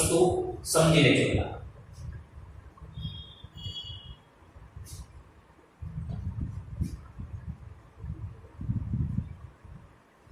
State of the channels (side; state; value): both; identical; correlation 1.00